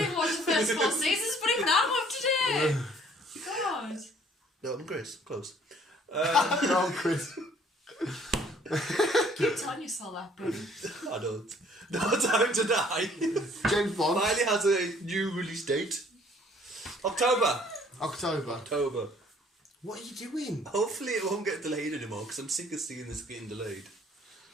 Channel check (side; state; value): both; normal; correlation 0.58